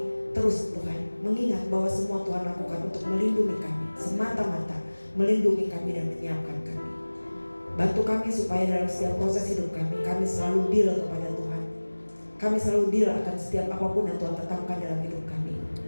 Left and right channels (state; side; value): inverted; both; correlation -1.00